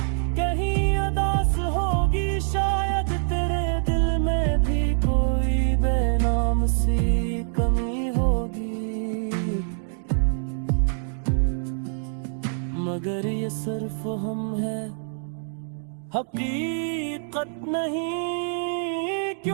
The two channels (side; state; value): left; silent; digital silence